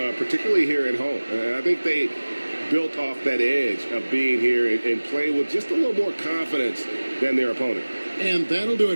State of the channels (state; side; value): inverted; both; correlation -1.00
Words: here at home. And I think they built off that edge of being here and play with just a little more confidence than their opponent. And that'll do